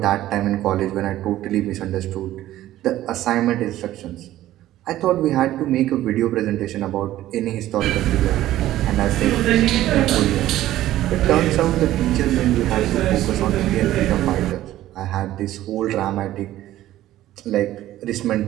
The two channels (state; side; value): quieter; left; 14.2 dB